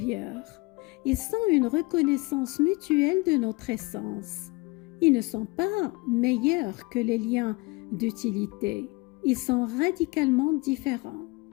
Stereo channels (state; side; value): quieter; right; 24.9 dB